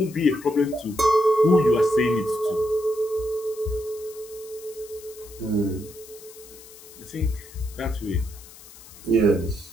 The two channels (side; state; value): left; noise; hiss, 19 dB below the sound